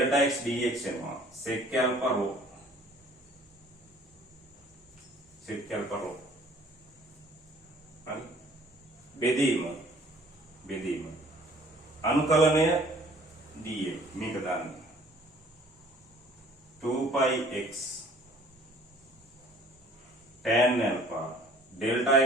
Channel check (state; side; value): normal; both; correlation 0.54